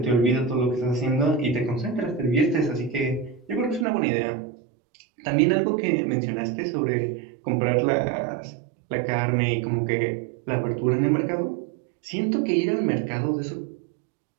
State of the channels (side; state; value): left; drops out; at 3.9 s